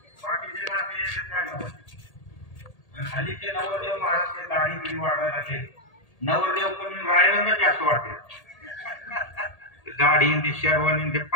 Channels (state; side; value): late; right; 1.8 ms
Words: हल्लीचे नवरदेव महाराज दाढी बिडी वाढवायला लागले. नवरदेव पण रायवंच जास्त वाटते. दाढी शेरवानी ते